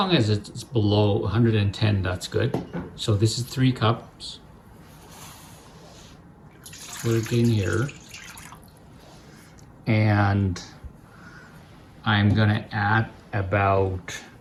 as it's below 110, that's good. So this is 3 cups. Put it in here. And I'm gonna add about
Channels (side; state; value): both; identical; correlation 1.00